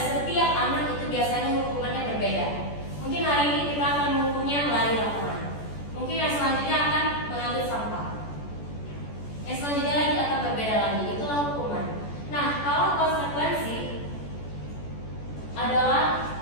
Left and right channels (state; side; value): late; right; 14 ms